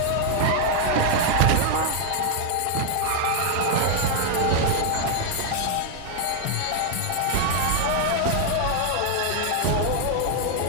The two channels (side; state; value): both; different; correlation 0.00